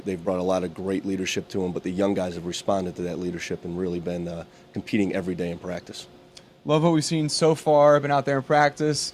brought a lot of great leadership to them, but the young guys have responded to that leadership and really been competing every day in practice. Love what we've seen so far. Been out there in practice.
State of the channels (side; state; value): both; identical; correlation 1.00